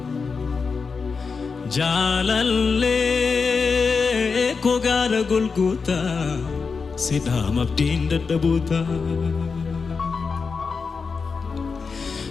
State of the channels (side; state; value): right; quieter; 5.0 dB